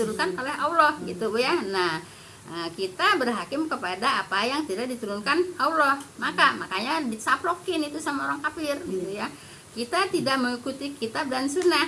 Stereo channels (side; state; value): both; identical; correlation 1.00